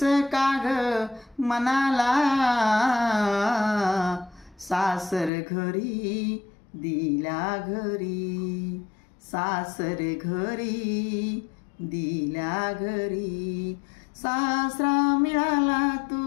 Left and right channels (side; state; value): right; drops out; at 5.3 s